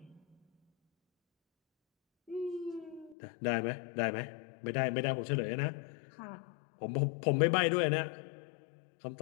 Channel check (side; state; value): right; drops out; at 3.2 s